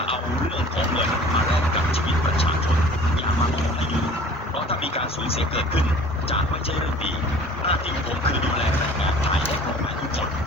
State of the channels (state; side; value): normal; both; correlation 0.47